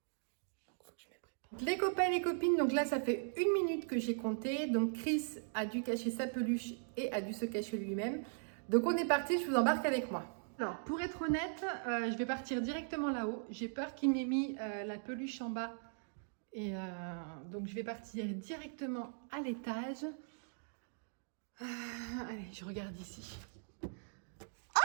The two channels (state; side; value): silent; left; digital silence